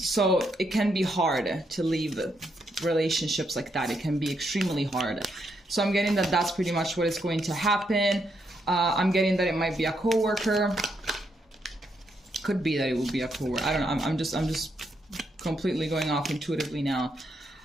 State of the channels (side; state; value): both; normal; correlation 0.78